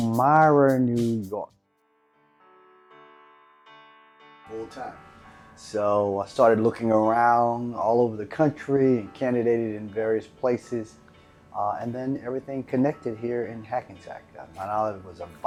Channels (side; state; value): both; identical; correlation 1.00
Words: New York. Full time. So I started looking around all over the country and candidated in various places. And then everything connected here in Hackensack. Mount Olive was a